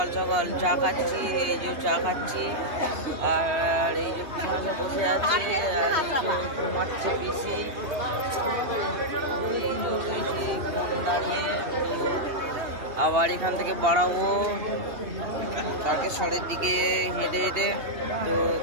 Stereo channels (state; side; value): late; left; 2.7 ms